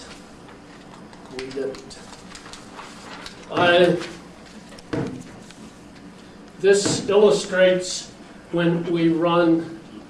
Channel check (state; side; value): identical; both; correlation 1.00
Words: we didn't. This illustrates when we run